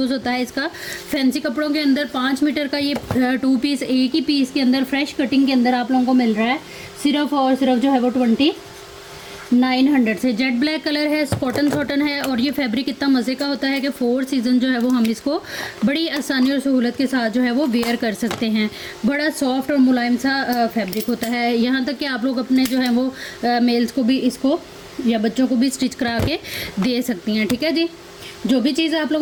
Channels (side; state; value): both; identical; correlation 1.00